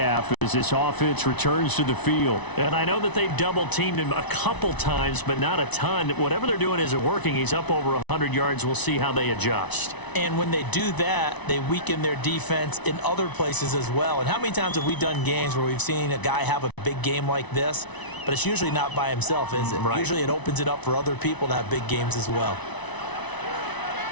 as this offense returns to the field. And I know that they've double-teamed him a couple times, but not a ton. Whatever they're doing isn't working. He's up over 100 yards. We'll see how they adjust. And when they do that, they weaken their defense in other places as well. And how many times have we done games where we've seen a guy have a big game like this, but it's usually not by himself, is it? Right. Usually it opens it up for other people to have big games as well.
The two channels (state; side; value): late; right; 1.0 ms